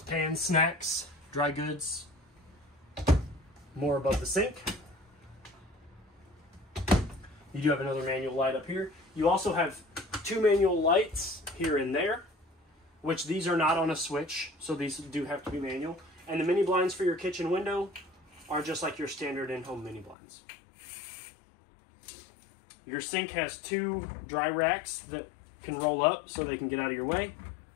pans, snacks, dry goods. More above the sink. You do have another manual light up here. You also have 2 manual lights here and there, which these are not on a switch, so these do have to be manual. And the mini blinds for your kitchen window are just like your standard in-home mini blinds. Your sink has 2 dry racks that can roll up so they can get out of your way.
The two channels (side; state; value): right; drops out; at 20.2 s